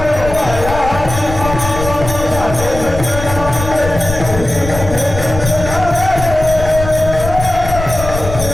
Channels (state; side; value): noise; left; rumble, 7 dB below the sound